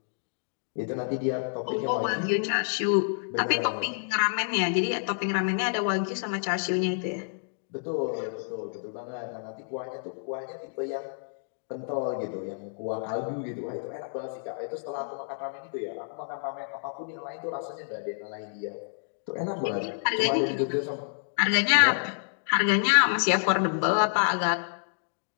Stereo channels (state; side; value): silent; right; digital silence